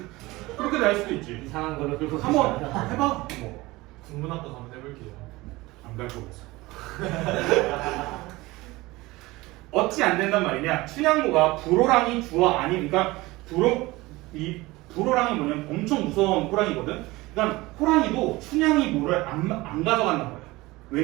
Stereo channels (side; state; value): left; quieter; 20.5 dB